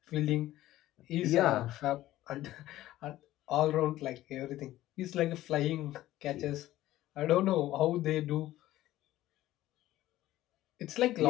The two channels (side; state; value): right; quieter; 15.1 dB